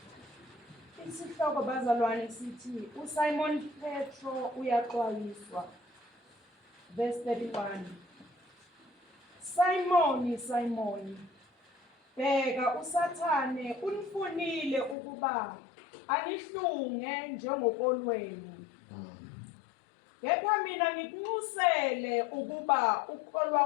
Isihloko bazalwane sithi uSimon Petro uyaxwayiswa. Verse 31. Simon, Simon, bheka uSathane unifunile ukuba anihlunge njengokolweni. Kepha mina ngikunxusele ukuba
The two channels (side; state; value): right; drops out; at 15.0 s